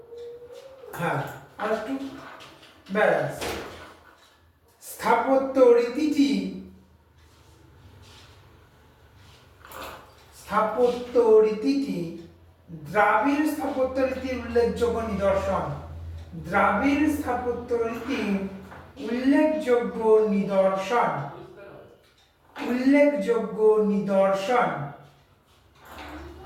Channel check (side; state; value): both; identical; correlation 1.00